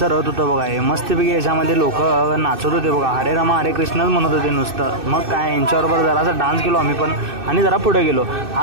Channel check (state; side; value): late; left; 2.6 ms